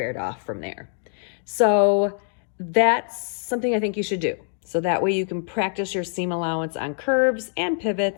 off from there. So that's something I think you should do. So that way you can practice your seam allowance on curves and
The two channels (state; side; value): silent; right; digital silence